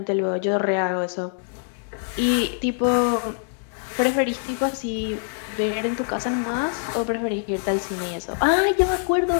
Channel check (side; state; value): right; silent; digital silence